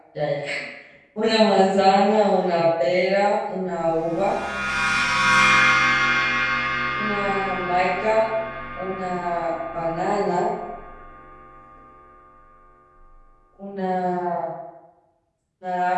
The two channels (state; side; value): identical; both; correlation 1.00